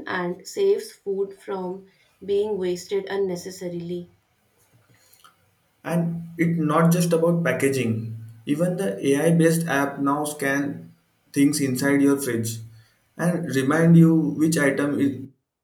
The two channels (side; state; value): both; identical; correlation 1.00